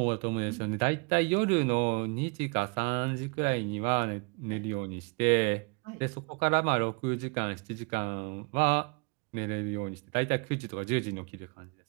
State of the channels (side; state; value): left; quieter; 32.9 dB